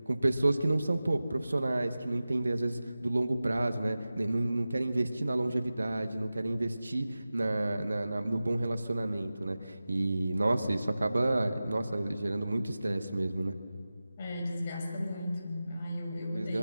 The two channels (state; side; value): inverted; both; correlation -0.95